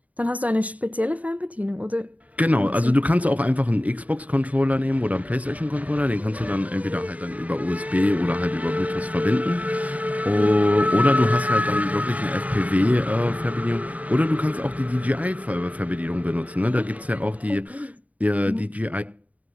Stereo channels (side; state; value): left; late; 0.071 ms